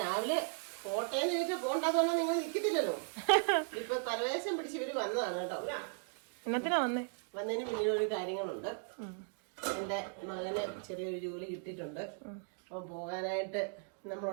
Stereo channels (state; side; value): silent; left; 53 dB below the other